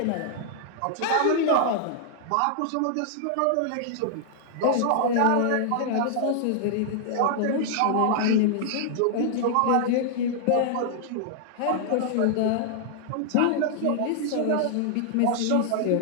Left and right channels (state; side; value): different; both; correlation -0.01